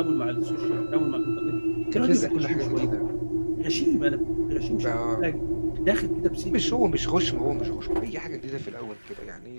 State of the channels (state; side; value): inverted; both; correlation -1.00